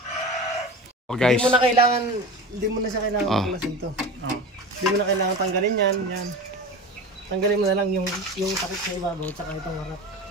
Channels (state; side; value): normal; both; correlation 0.30